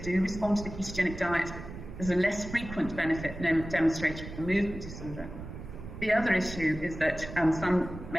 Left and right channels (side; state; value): right; noise; rumble, 11 dB below the sound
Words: respond to the ketogenic diet. There's a less frequent benefit demonstrated for movement disorder. The other issue is that some